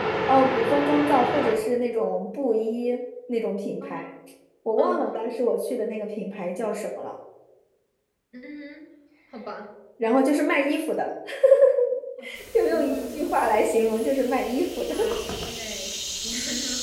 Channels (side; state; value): both; identical; correlation 1.00